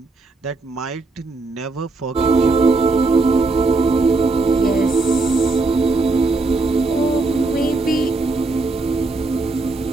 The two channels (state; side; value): quieter; left; 3.5 dB